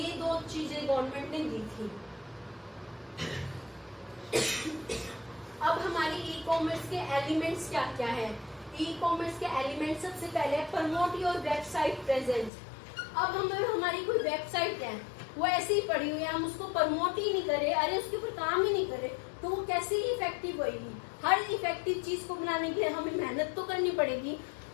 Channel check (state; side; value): drops out; right; at 12.5 s